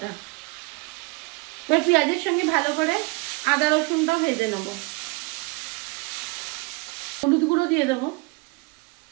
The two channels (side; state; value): left; quieter; 26.8 dB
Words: এবার পেঁয়াজের সঙ্গে ভালো করে আদা রসুনটাও ভেজে নেব। হলুদ গুঁড়ো দিয়ে দেবো,